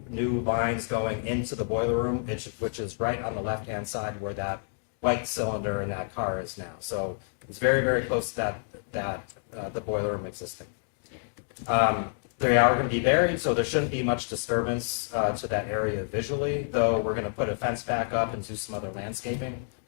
lines going into the boiler room, which is right on the left-hand side where that white cylinder in that car is now. So it's very, very close to the boiler room existing. They are going to be buried, so there shouldn't be much disturbance to that area visually, though we're going to put a fence back up and do some other landscaping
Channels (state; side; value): silent; right; digital silence